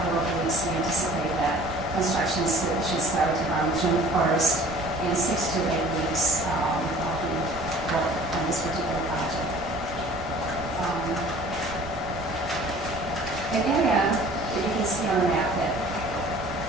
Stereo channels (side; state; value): both; normal; correlation 0.49